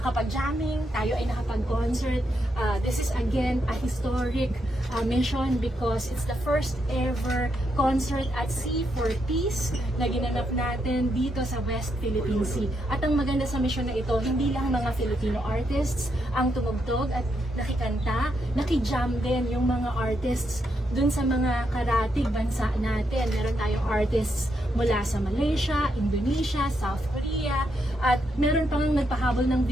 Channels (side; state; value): both; normal; correlation 0.80